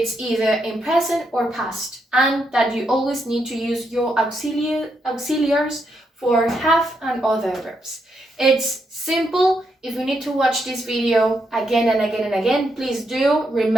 either in present or past, and that you always need to use your auxiliaries for have and other verbs. It's simple. If you need to watch this video again and again and again, please do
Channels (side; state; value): both; normal; correlation 0.80